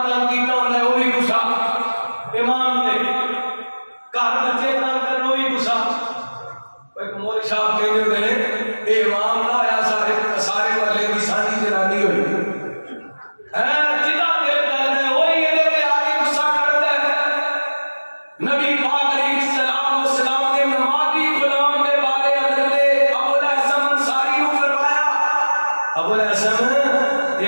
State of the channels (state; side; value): inverted; both; correlation -1.00